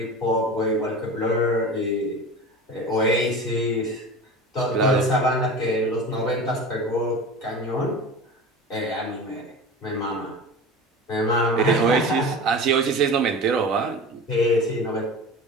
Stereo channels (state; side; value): normal; both; correlation 0.33